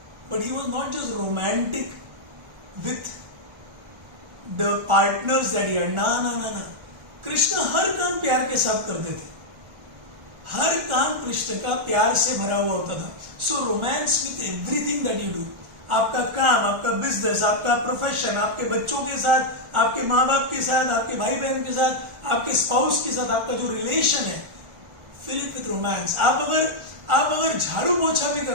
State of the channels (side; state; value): left; late; 1.4 ms